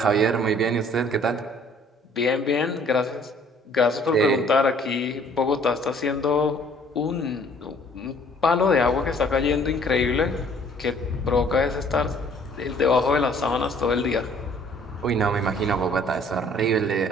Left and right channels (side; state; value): both; normal; correlation 0.57